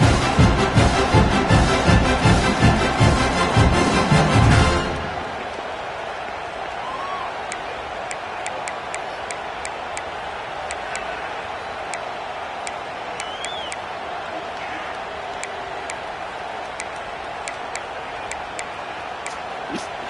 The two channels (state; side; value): identical; both; correlation 1.00